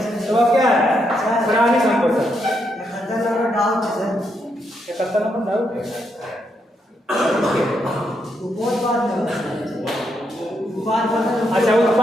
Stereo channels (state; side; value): normal; both; correlation 0.79